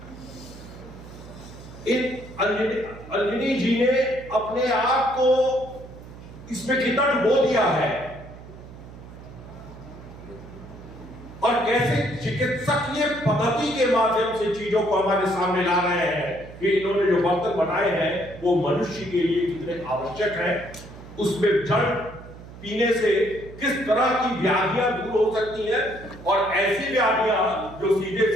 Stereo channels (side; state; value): right; noise; hum, 16 dB below the sound